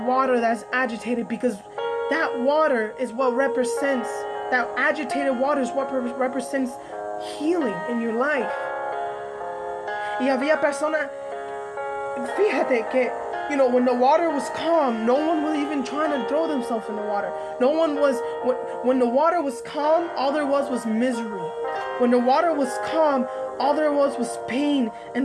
that's agitated, because that water is what represents, that agitated water is what represents healing in your life. Y había personas, fíjate que, when the water was calm, no one was even trying to throw themselves in the water. No one was, when the water was calm, all there was misery. When the water was calm, all there was pain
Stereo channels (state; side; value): identical; both; correlation 1.00